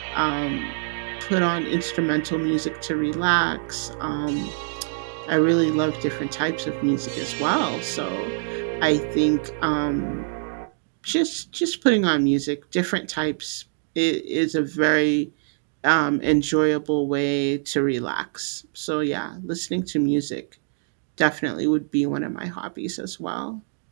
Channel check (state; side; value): silent; left; digital silence